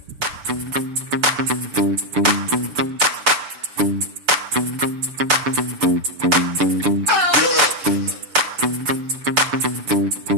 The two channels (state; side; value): late; left; 6.9 ms